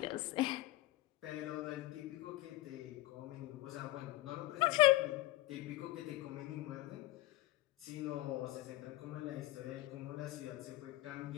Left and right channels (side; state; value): right; quieter; 17.9 dB